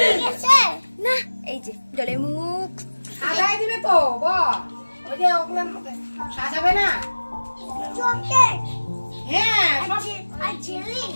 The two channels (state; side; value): inverted; both; correlation -1.00